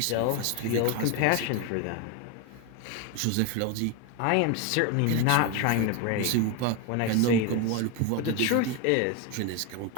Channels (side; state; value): both; different; correlation 0.02